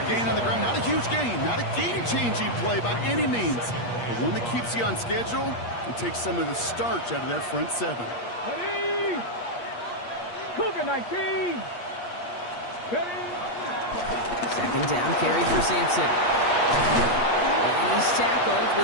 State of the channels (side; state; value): right; late; 8.4 ms